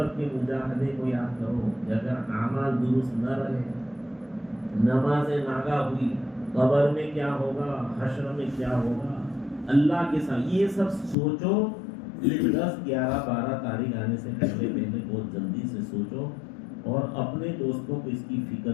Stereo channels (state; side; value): drops out; right; at 11.2 s